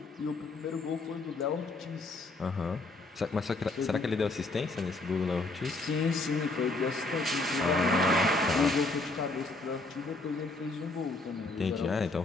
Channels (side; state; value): right; quieter; 3.2 dB